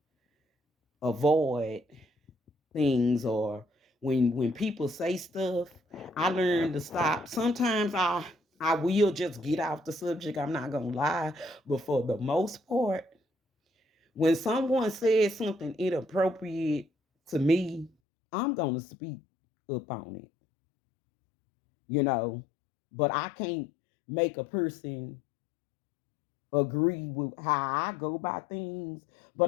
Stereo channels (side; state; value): right; drops out; at 17.9 s